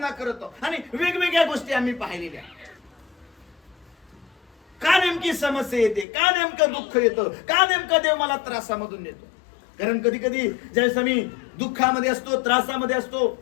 करतो, आणि वेगवेगळ्या गोष्टी आम्ही पाहिलेल्या. का नेमकी समस्या येते, का नेमकं दुःख येतं, का नेमका देव मला त्रासामधून नेतो. कारण कधी कधी ज्यावेळेस आम्ही दुःखामध्ये असतो, त्रासामध्ये असतो,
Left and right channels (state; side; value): drops out; right; at 6.1 s